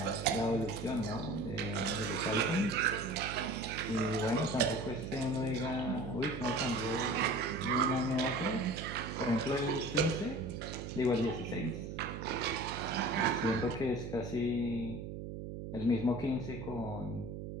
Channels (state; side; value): noise; right; hum, 7 dB below the sound